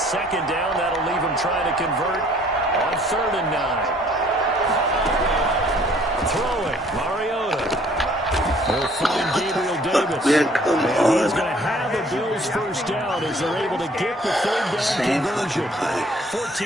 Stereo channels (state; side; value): normal; both; correlation 0.58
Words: down, that'll leave him trying to convert on 3rd and 9. Throwing, Mariota. They'll find Gabriel Davis. And he's going to have a Bills 1st down as they're able to get the 3rd down conversion.